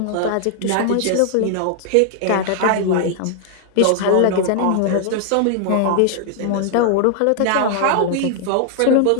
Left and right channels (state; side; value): different; both; correlation -0.01